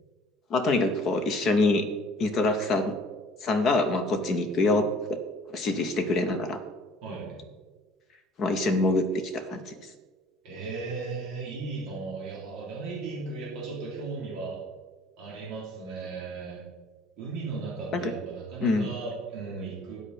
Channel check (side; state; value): both; normal; correlation 0.52